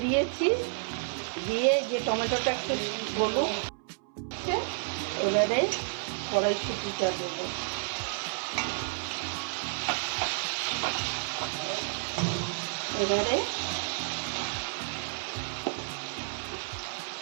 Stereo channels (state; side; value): silent; left; 57 dB below the other